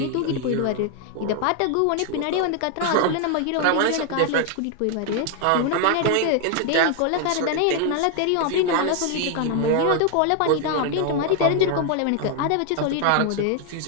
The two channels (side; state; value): both; different; correlation 0.00